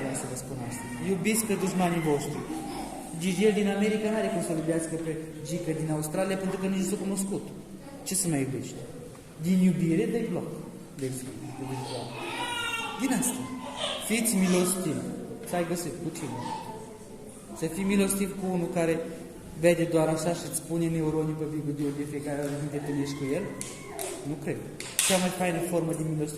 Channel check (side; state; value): both; identical; correlation 1.00